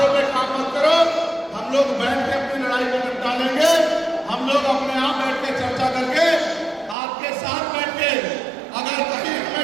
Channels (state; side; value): drops out; left; at 7.0 s